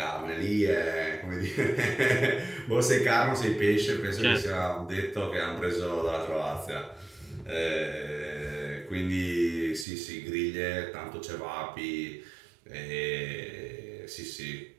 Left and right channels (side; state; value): left; drops out; at 9.9 s